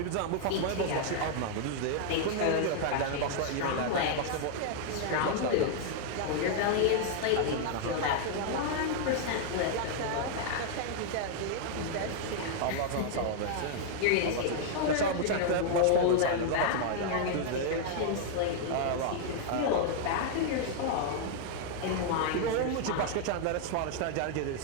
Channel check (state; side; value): different; both; correlation 0.00